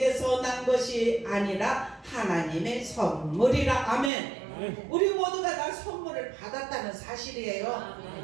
난 것이 아니라 하나님의 선물이라 아멘. 우리 모두가 다 선물을 받았다는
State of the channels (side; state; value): left; drops out; at 4.1 s